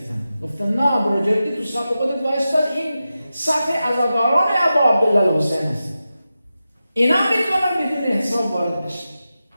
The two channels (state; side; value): inverted; both; correlation -0.92